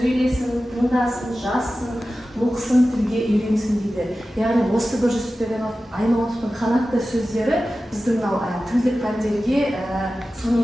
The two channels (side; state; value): both; normal; correlation 0.94